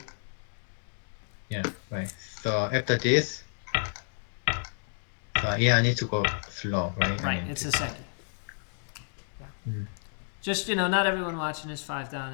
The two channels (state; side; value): silent; right; digital silence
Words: Yeah, right. So after this, I need to go slow, right? Right, it's a second. Yeah. Just, not everyone watching is 5-down.